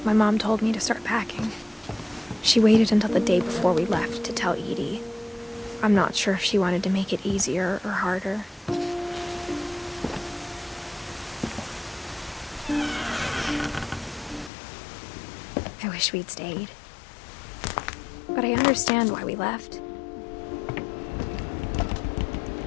my mom told me to start packing. She waited until the day before we left to tell Edie. I'm not sure if she wanted to make it easier or harder. I wish we'd stayed. But I understand why we left.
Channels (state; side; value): drops out; right; at 14.5 s